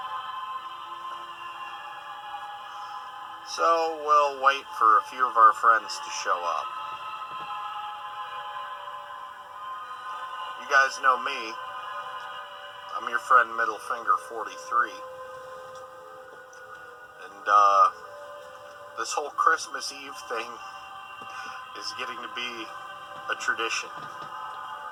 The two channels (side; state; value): both; identical; correlation 1.00